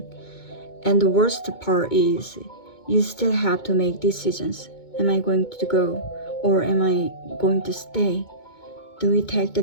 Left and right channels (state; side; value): late; right; 2.2 ms